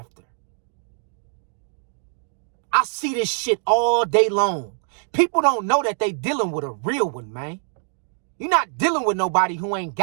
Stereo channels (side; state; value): left; silent; 56 dB below the other